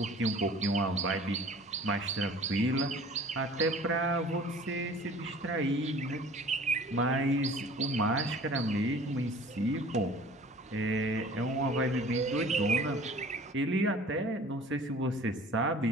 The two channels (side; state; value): both; normal; correlation 0.47